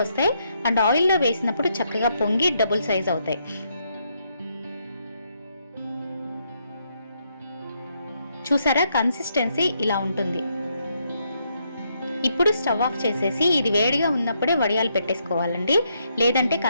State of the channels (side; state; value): both; inverted; correlation -0.77